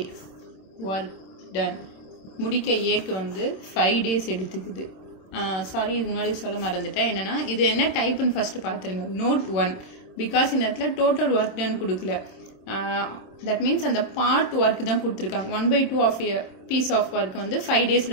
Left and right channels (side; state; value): right; late; 26 ms